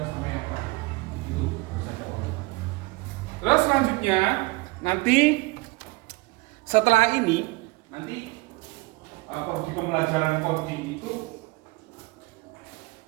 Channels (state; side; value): quieter; left; 23.5 dB